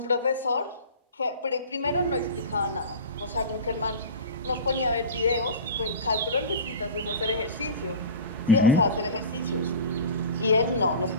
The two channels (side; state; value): both; inverted; correlation -0.32